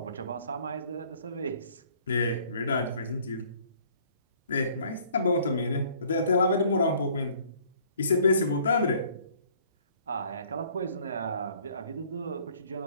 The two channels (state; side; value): inverted; both; correlation -0.58